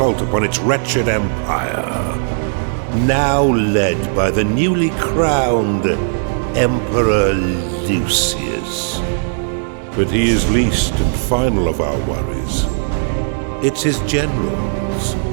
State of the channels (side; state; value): left; silent; 67 dB below the other